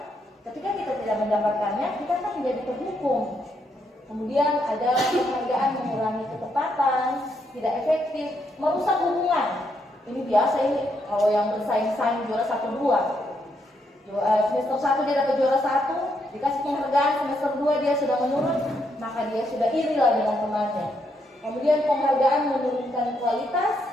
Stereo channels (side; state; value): both; normal; correlation 0.77